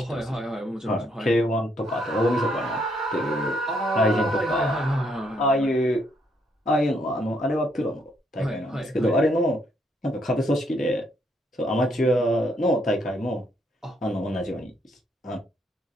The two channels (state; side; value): normal; both; correlation 0.72